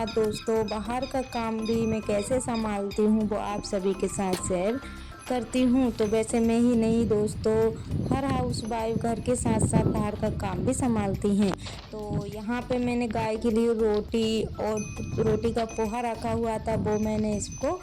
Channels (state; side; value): identical; both; correlation 1.00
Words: दोस्तों, बाहर का काम भी मैं कैसे संभालती हूँ वो आप सभी के साथ शेयर करती हूँ। तो वैसे मैं ही नहीं दोस्तों, हर हाउस वाइफ घर के साथ साथ बाहर का काम भी संभालती हैं। तो यहाँ पे मैंने गाय के लिए रोटी और रोटी का पोहा रखा हुआ था, वो मैंने इसको